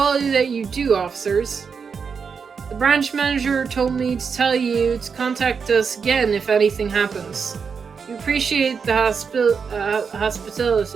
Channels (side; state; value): left; quieter; 5.9 dB